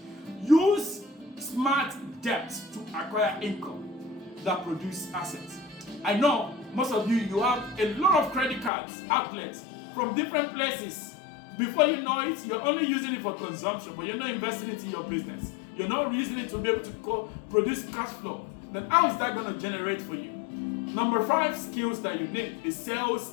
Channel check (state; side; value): drops out; right; at 8.7 s